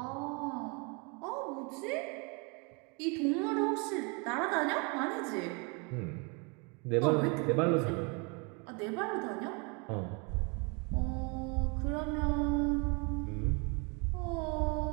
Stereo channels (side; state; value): left; quieter; 32.3 dB